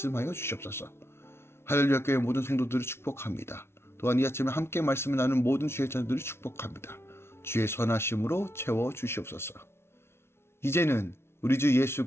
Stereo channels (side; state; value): right; late; 0.12 ms